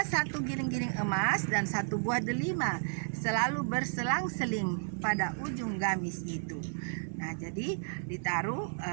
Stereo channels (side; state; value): left; silent; digital silence